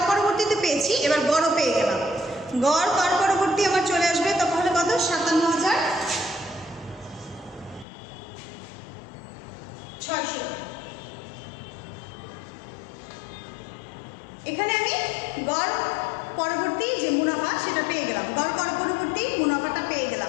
পরবর্তীতে পেয়েছি, এবার গড়ও পেয়ে গেলাম। গড় কর পরবর্তী আমার চলে আসবে তখন কত? 57,600। এখানে আমি গড় পরবর্তী যে মুনাফা সেটা পেয়ে গেলাম, গড় কর পরবর্তী মুনাফাটা পেয়ে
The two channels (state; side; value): drops out; right; at 7.9 s